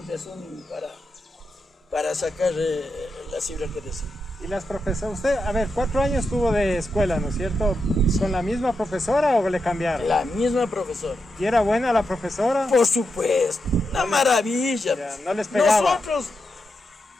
resumen para sacar la cifra que decía. Y las profesoras, usted, a ver, 4 años tuvo de escuela, ¿no es cierto? ¿Con la misma profesora o le cambiaron? La misma profesora. ¿Y era buena la profesora? Por supuesto, una maravilla. Ya, no les pegaba. Nosotros,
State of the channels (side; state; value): both; normal; correlation 0.86